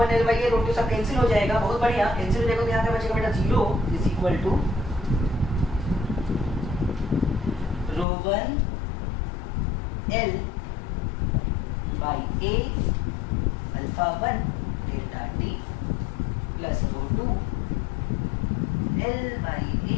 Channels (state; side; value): drops out; right; at 8.1 s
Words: L/A रो 2 सब कैंसिल हो जाएगा। बहुत बढ़िया, कैंसिल हो जाएगा तो यहाँ पे बचेगा बेटा 0 is equal to rho 1 L/A alpha 1 delta T plus rho 2